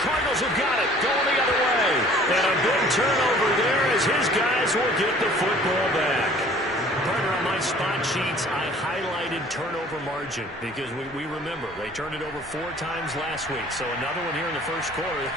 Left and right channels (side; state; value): both; normal; correlation 0.51